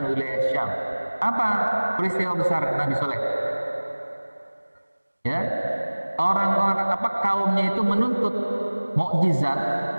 wilayah Syam. Apa peristiwa besar Nabi Saleh? Ya, orang-orang kaumnya itu menuntut mukjizat.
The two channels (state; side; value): inverted; both; correlation -1.00